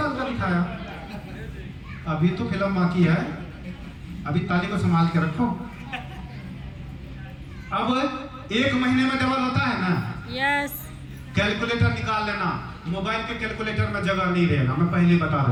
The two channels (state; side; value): identical; both; correlation 1.00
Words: का दिखाया, अभी तो फिल्म बाकी है, अभी ताली को संभाल के रखो। अब 1 महीने में डबल होता है ना? यस। कैलकुलेटर निकाल लेना, मोबाइल के कैलकुलेटर में जगह नहीं रहेगा, मैं पहले बता